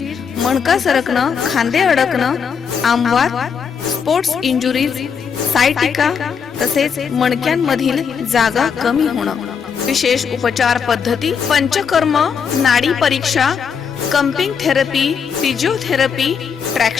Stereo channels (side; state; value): right; quieter; 6.6 dB